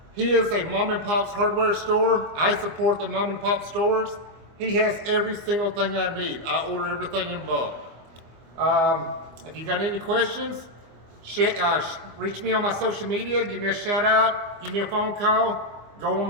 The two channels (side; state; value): left; late; 24 ms